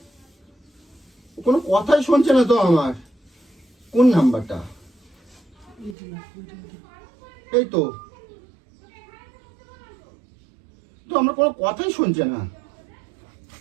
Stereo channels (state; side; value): drops out; left; at 6.0 s